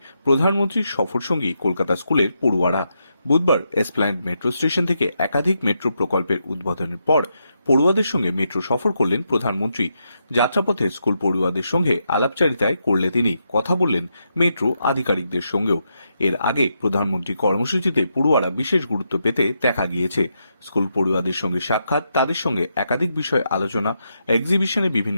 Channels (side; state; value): both; inverted; correlation -0.82